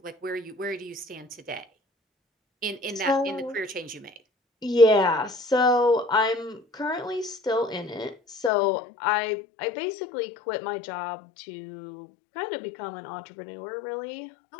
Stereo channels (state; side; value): drops out; right; at 8.5 s